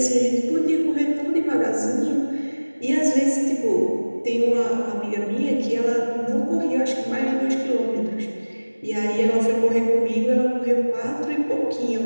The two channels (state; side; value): inverted; both; correlation -1.00